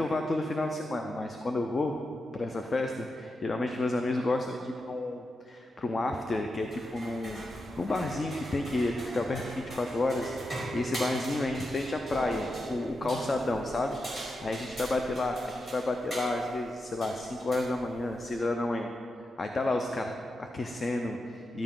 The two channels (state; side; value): normal; both; correlation 0.87